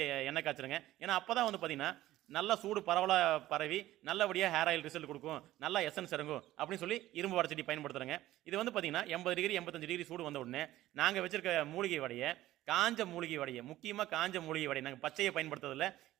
எண்ணெய் காய்ச்சணுங்க. ஏன்னா அப்பதான் வந்து பார்த்தீங்கன்னா, நல்லா சூடு பரவலா பரவி நல்லபடியா ஹேர் ஆயில் ரிசல்ட் குடுக்கும். நல்லா எசன்ஸ் இறங்கும் அப்படின்னு சொல்லி இரும்பு வடச்சட்டி பயன்படுத்துறேங்க. இது வந்து பார்த்தீங்கன்னா 80 டிகிரி 85 டிகிரி சூடு வந்த உடனே நாங்க வச்சிருக்க மூலிகை வடைய, காஞ்ச மூலிகை வடைய, முக்கியமா காஞ்ச மூலிகை வடை நாங்க பச்சையை பயன்படுத்துறதில்ல.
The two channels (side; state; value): left; quieter; 15.2 dB